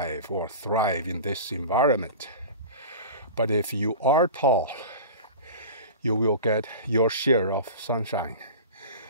or thrive in this environment. But if you are tall, you will get your share of sunshine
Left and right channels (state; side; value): inverted; both; correlation -0.34